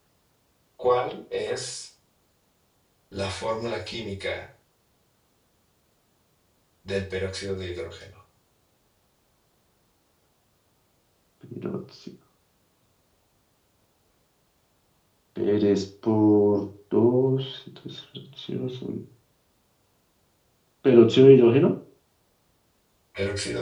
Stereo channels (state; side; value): identical; both; correlation 1.00